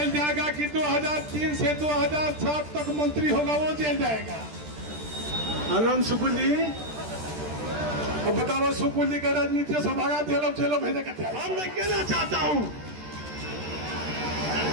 जाएगा कि 2003 से 2007 तक मंत्री होगा वो जेल जाएगा? आनंद सुकुल जी, अब बताओ, सुकुल जी का राजनीति से भागा जेलों भेजे कहते हैं। मैं कहना चाहता हूं,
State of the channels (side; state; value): left; late; 13 ms